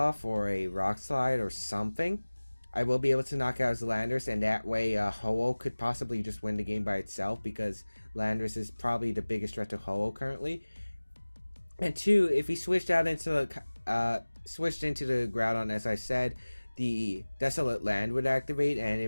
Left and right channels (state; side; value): inverted; both; correlation -1.00